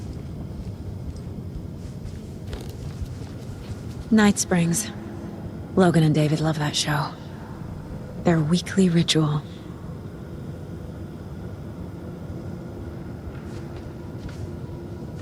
Night Springs. Logan and David love that show. Their weekly ritual.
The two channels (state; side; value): identical; both; correlation 1.00